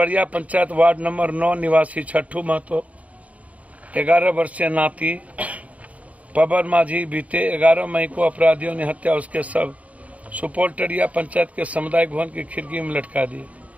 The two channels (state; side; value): late; left; 0.068 ms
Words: पंचायत वार्ड नंबर 9 निवासी छठू महतो 11 वर्षीय नाती पवन माझी बीते 11 मई को अपराधियों ने हत्या उसके सब सुपौल टरिया पंचायत के सामुदायिक भवन की खिड़की में लटका दिए।